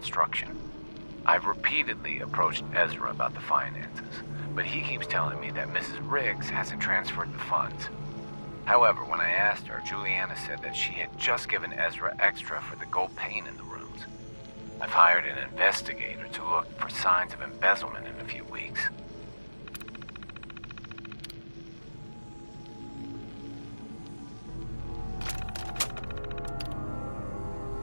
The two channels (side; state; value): both; inverted; correlation -1.00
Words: I've repeatedly approached Ezra about the finances, but he keeps telling me that Mrs. Riggs hasn't transferred the funds. However, when I asked her, Juliana said that she had just given Ezra extra for the gold paint in the rooms. I've hired an investigator to look for signs of embezzlement in a few weeks.